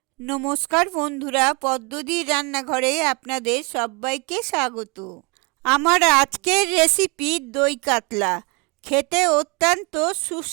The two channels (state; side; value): quieter; left; 31.3 dB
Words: নমস্কার বন্ধুরা, পদ্মদির রান্নাঘরে আপনাদের সবাইকে স্বাগত। আমার আজকের রেসিপি দই কাতলা। খেতে অত্যন্ত